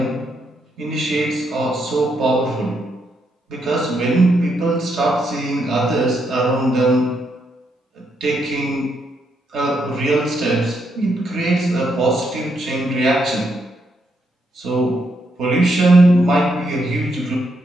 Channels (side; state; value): both; normal; correlation 0.78